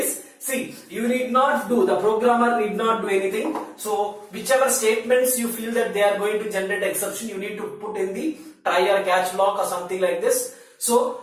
See, the programmer need not do anything. So, whichever statements you feel that they are going to generate exception, you need to put in the try or catch block or something like this.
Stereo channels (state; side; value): identical; both; correlation 1.00